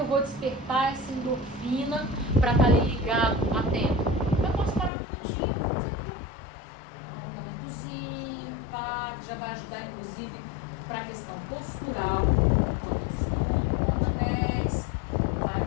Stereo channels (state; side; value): drops out; right; at 4.9 s